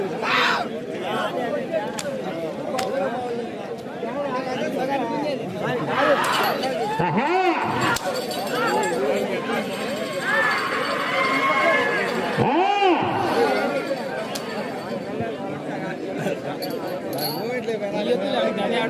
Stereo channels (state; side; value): identical; both; correlation 1.00